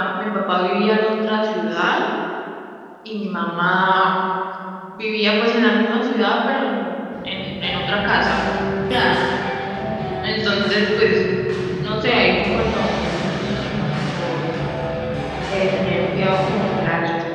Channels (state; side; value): identical; both; correlation 1.00